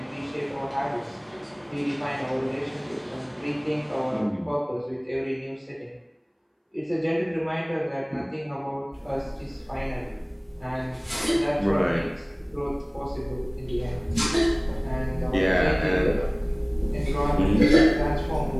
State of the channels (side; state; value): both; identical; correlation 1.00